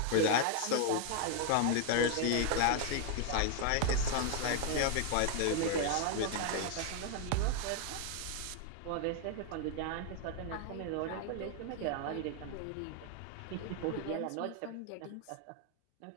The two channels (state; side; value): different; both; correlation 0.00